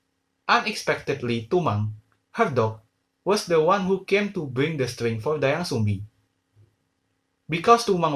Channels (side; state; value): both; identical; correlation 1.00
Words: Unexpectedly, Tumang, her dog, was the one who came to bring the string for Dayang Sumbi. Because Tumang